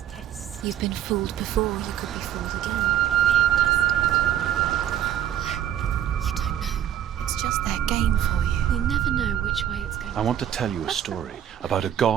test. You've been fooled before, you could be fooled again. You don't know. It's just their game for you. You never know which way it's going. I want to tell you a story about a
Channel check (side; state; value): left; quieter; 10.5 dB